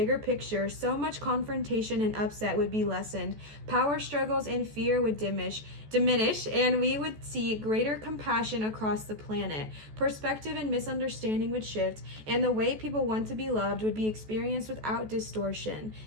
picture, so much confrontation and upset would be lessened. Power struggles and fear would diminish, and we would see greater compassion across the planet. Perspective and misunderstanding would shift, and the way people want to be loved would be experienced without distortion.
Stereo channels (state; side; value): late; left; 14 ms